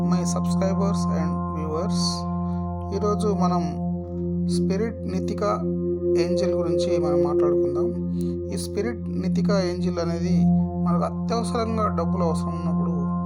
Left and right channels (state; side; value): identical; both; correlation 1.00